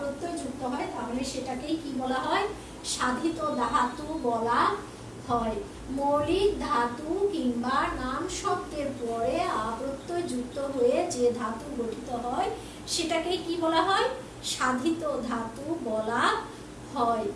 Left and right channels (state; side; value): identical; both; correlation 1.00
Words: যুক্ত হয় তাহলে সেটাকেই কি বলা হয়? সাধিত ধাতু বলা হয়। মৌলিক ধাতু কিংবা নাম শব্দের পরে আ প্রত্যয় যুক্ত হয়ে যে ধাতু গঠিত হয় সেটাকেই কি বলা হয়? সাধিত ধাতু বলা হয়।